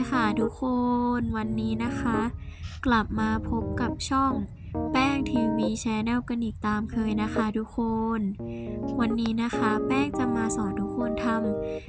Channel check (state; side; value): identical; both; correlation 1.00